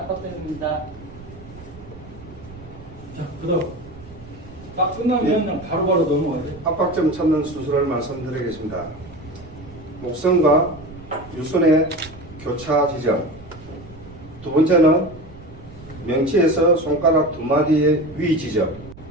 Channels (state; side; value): noise; right; rumble, 19 dB below the sound